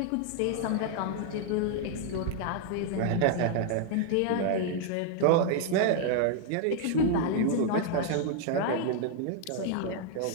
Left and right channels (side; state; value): both; different; correlation 0.00